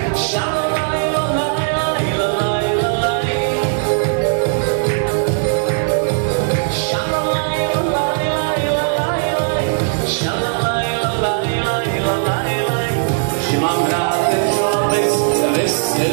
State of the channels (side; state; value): left; silent; digital silence